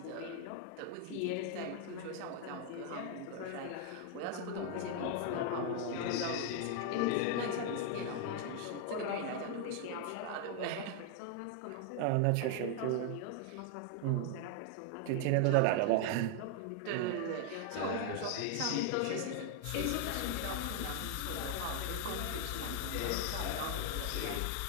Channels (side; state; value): both; different; correlation 0.00